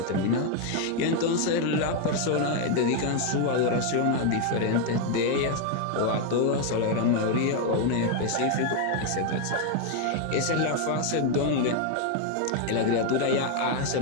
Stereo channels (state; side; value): different; both; correlation 0.01